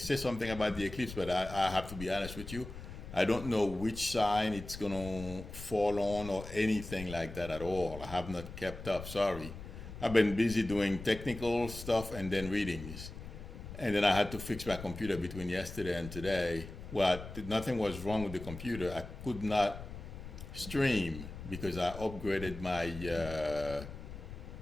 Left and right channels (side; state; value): left; noise; rumble, 11 dB below the sound